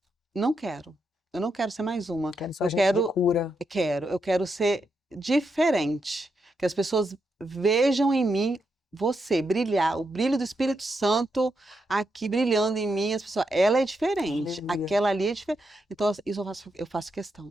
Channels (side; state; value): both; normal; correlation 0.83